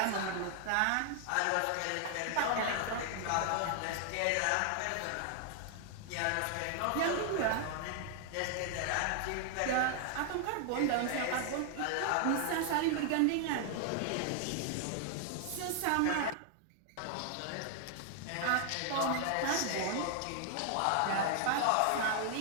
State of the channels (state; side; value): different; both; correlation 0.00